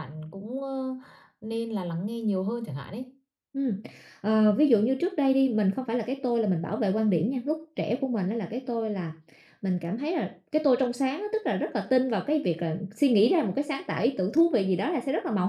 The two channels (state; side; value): identical; both; correlation 1.00